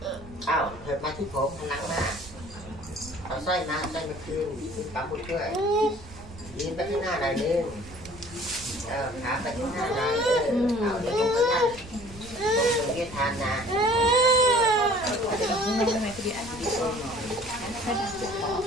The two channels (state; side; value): noise; right; rumble, 17 dB below the sound